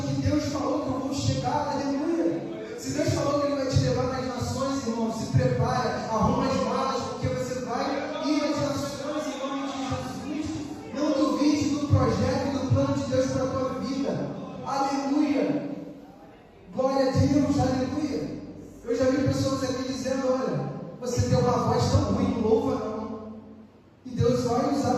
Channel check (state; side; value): identical; both; correlation 1.00